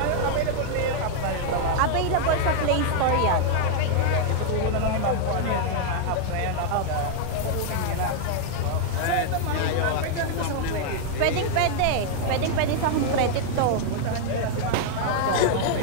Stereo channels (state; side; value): different; both; correlation 0.00